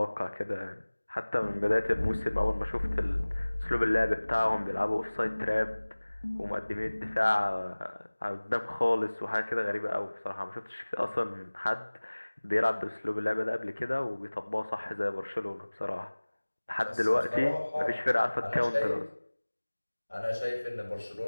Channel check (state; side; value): inverted; both; correlation -1.00